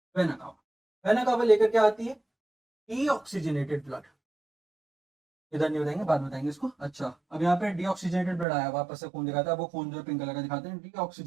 Vena cava, vena cava लेकर क्या आती है, डीऑक्सीजनेटेड ब्लड। इधर नहीं बताएंगे, बाद में बताएंगे इसको। अच्छा, अब यहाँ पे डीऑक्सीजनेटेड ब्लड आया, वापस से खून दिखाता है, वो खून जो है पिंक कलर का दिखाते हैं।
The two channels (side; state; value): left; drops out; at 8.5 s